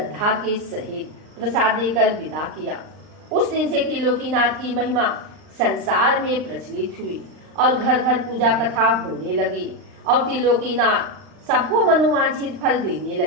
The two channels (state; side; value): late; left; 39 ms